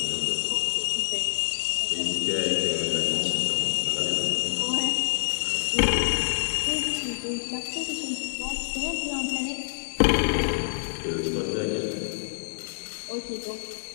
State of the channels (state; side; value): silent; right; digital silence